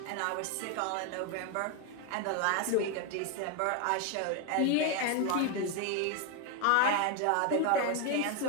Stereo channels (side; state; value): both; different; correlation 0.01